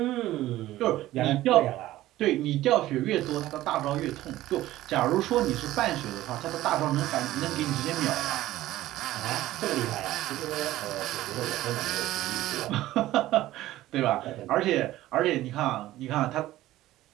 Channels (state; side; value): quieter; left; 15.5 dB